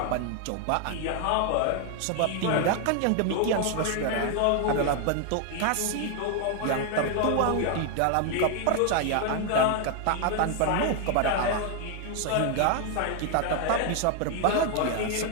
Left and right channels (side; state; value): both; different; correlation 0.00